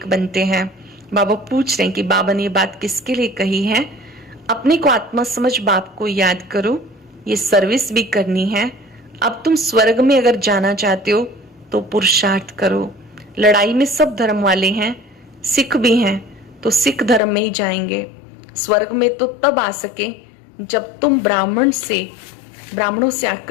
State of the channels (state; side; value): drops out; right; at 17.2 s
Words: बनते हैं। बाबा पूछ रहे हैं कि बाबा ने ये बात किसके लिए कही है? अपने को आत्मा समझ बाप को याद करो, ये सर्विस भी करनी है। अब तुम स्वर्ग में अगर जाना चाहते हो तो पुरुषार्थ करो। लड़ाई में सब धर्म वाले हैं, सिख भी हैं, तो सिख धर्म में ही जाएंगे। स्वर्ग में तो तब आ सके जब तुम ब्राह्मणों से